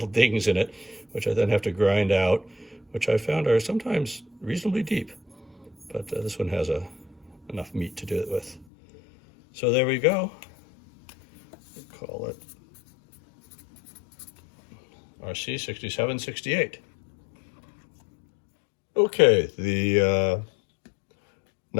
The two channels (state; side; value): drops out; right; at 8.7 s